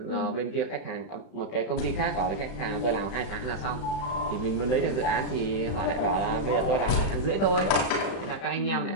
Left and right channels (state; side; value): late; right; 31 ms